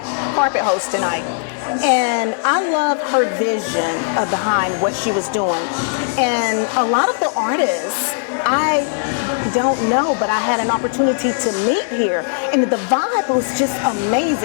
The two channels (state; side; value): silent; right; digital silence